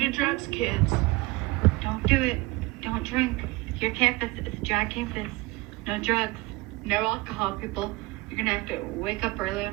drugs, kids. Don't do it. Don't drink. Your campus is a dry campus. No drugs. No alcohol, people. You're going to have to wake up early on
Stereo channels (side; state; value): left; quieter; 21.9 dB